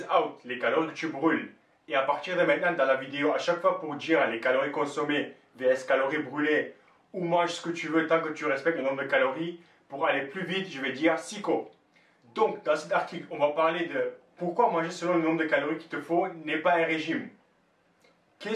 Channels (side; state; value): both; identical; correlation 1.00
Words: out, les calories que tu brûles. Et à partir de maintenant dans la vidéo, à chaque fois pour dire les calories consommées vs calories brûlées, ou mange ce que tu veux tant que tu respectes le nombre de calories, pour aller plus vite, je vais dire SICO. Donc dans cet article, on va parler de pourquoi manger selon le nombre de calories qu'il te faut n'est pas un régime.